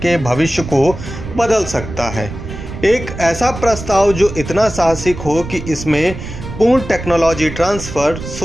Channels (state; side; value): noise; right; rumble, 10 dB below the sound